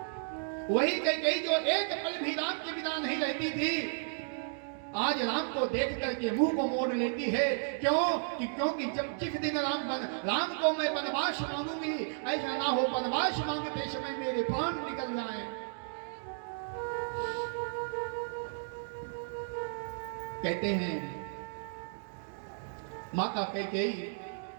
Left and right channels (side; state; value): left; silent; digital silence